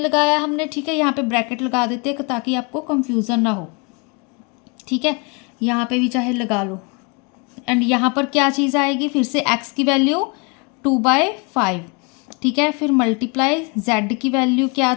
हमने। ठीक है, यहाँ पे ब्रैकेट लगा देते हैं ताकि आपको कंफ्यूजन ना हो। ठीक है, यहाँ पे भी चाहे लगा लो। एंड यहाँ पर क्या चीज़ आएगी, फिर से x की वैल्यू 2/5। ठीक है, फिर मल्टीप्लाई z की वैल्यू क्या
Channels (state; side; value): quieter; right; 30.9 dB